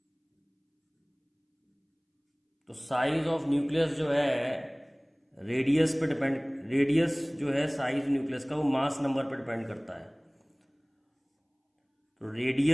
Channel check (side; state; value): both; identical; correlation 1.00